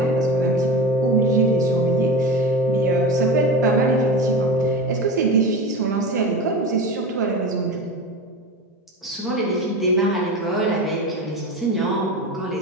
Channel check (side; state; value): both; normal; correlation 0.27